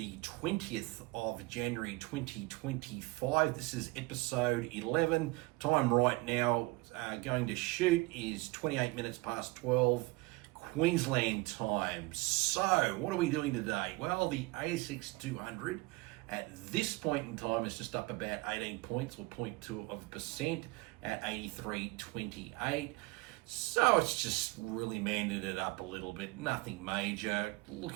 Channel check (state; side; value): quieter; left; 23.4 dB